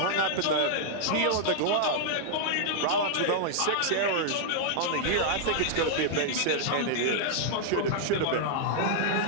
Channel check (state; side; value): different; both; correlation -0.01